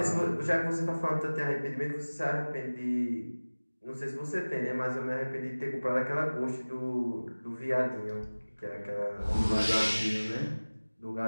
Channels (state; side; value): inverted; both; correlation -1.00